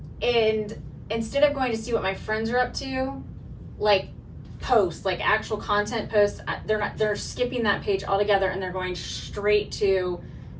instead of going to see what my friends are up to, like posts, like actual content posts, they're skipping that page altogether and they're going straight to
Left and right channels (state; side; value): identical; both; correlation 1.00